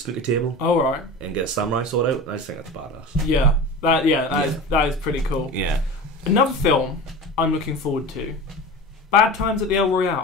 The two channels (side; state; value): both; normal; correlation 0.32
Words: table. Oh, right. And get a samurai sword out. I just think that's badass. Yeah. That is pretty cool. Yeah. Another film I'm looking forward to. Bad Times at the El